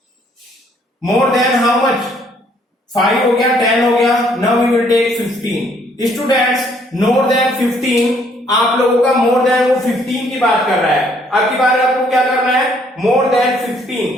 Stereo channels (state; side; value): normal; both; correlation 0.65